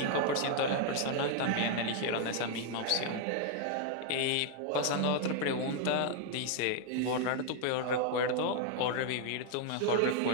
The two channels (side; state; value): both; different; correlation 0.00